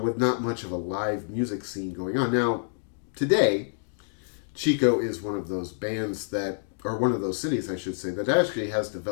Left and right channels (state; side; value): silent; right; digital silence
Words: with not much of a live music scene going on. Now, today, Chico is one of those bands that, or one of those cities, I should say, that actually has